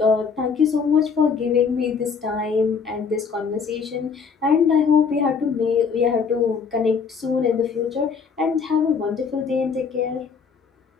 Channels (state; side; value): quieter; right; 5.8 dB